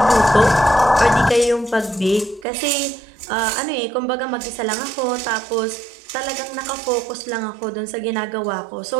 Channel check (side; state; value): left; drops out; at 2.5 s